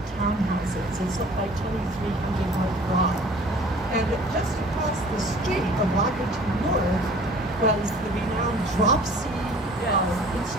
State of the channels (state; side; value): normal; both; correlation 0.49